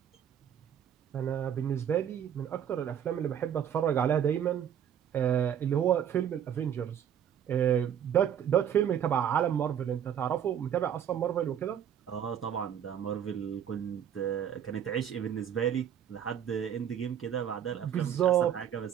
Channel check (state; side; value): quieter; left; 9.2 dB